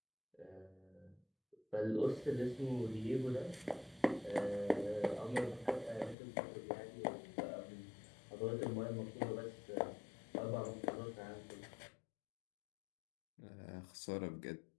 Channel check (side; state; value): right; drops out; at 6.2 s